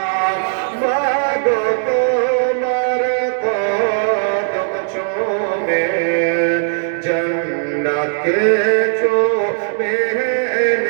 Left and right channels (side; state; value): left; silent; digital silence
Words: मागो तुम्हार कदम चूमे जन्नत के चूमे